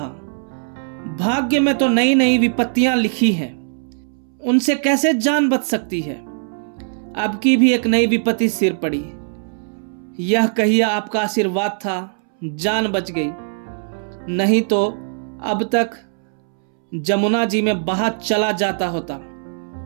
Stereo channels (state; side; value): silent; left; 66 dB below the other